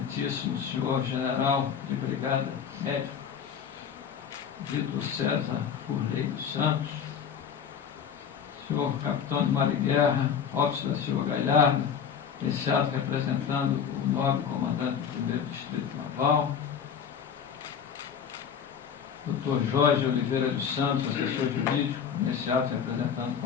Senhor General de Brigada Médico, Vitor César Furley dos Santos, Senhor Capitão de Mar e Guerra, Robson da Silva Galhardo, esse ato representando o nobre comandante do 1º Distrito Naval, Dr. Jorge Oliveira dos Santos, assessor jurídico, nesse ato representando o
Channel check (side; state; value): right; quieter; 7.5 dB